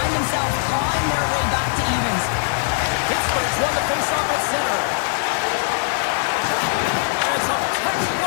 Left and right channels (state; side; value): silent; right; 65 dB below the other